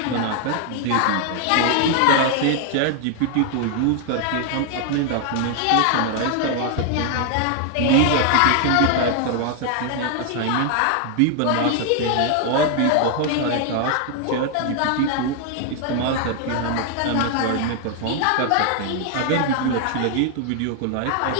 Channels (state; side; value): different; both; correlation 0.00